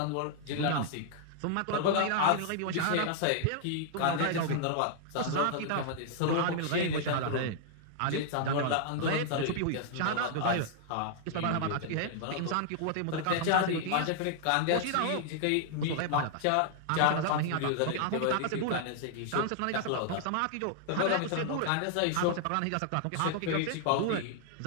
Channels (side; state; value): both; different; correlation -0.01